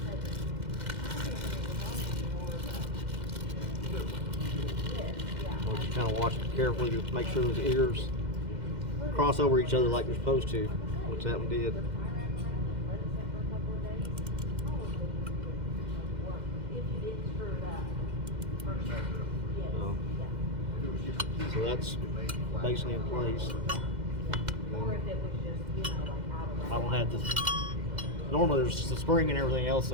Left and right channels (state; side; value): late; left; 2.1 ms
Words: Well, just kind of watch it carefully to make sure those ears cross over each other like they're supposed to, which that one did. So that's basically in place. I don't have this. Normally there's the spring and everything else